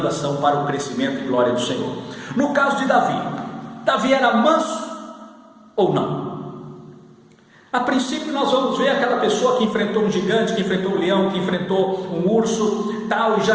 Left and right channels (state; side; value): identical; both; correlation 1.00